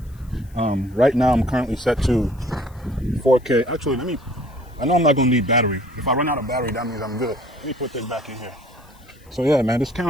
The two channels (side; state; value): left; noise; hiss, 30 dB below the sound